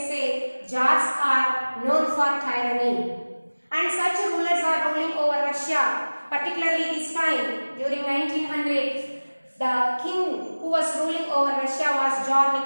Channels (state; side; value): inverted; both; correlation -1.00